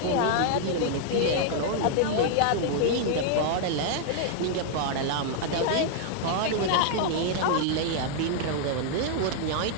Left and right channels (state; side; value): different; both; correlation 0.00